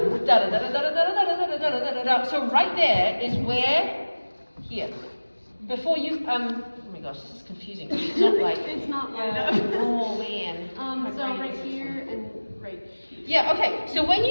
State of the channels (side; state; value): both; inverted; correlation -1.00